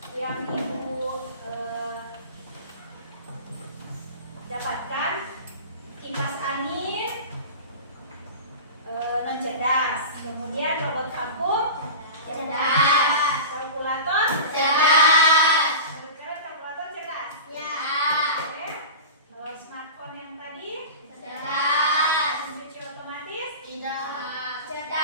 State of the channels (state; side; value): inverted; both; correlation -0.32